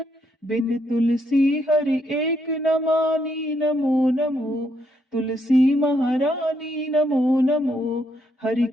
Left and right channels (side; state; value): both; normal; correlation 0.75